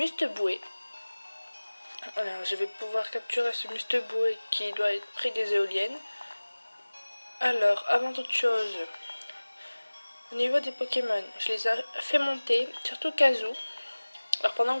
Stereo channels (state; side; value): inverted; both; correlation -1.00